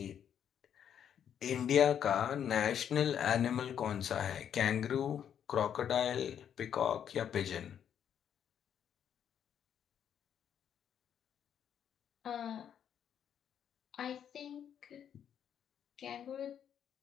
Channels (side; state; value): right; quieter; 8.9 dB